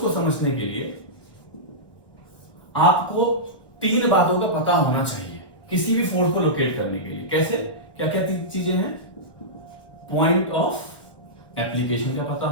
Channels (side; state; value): right; late; 1.2 ms